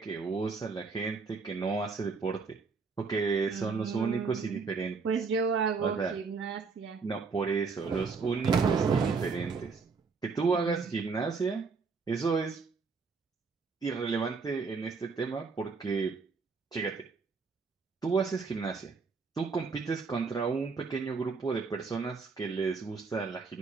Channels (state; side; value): quieter; left; 4.8 dB